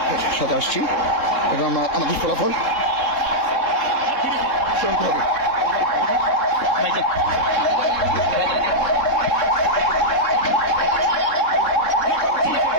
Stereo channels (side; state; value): right; late; 3.7 ms